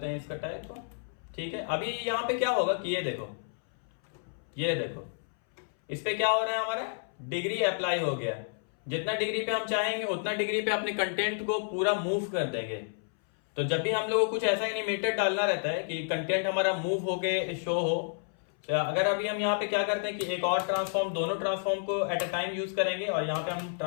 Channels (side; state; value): right; silent; 58 dB below the other